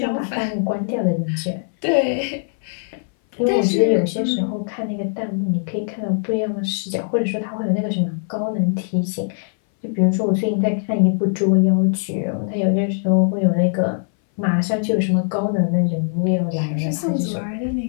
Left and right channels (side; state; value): right; silent; 60 dB below the other